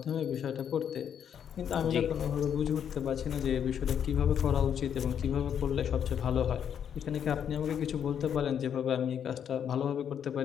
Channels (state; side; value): quieter; right; 8.5 dB